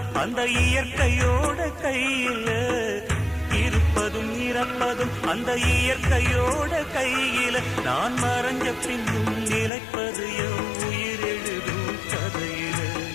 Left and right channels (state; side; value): drops out; right; at 9.7 s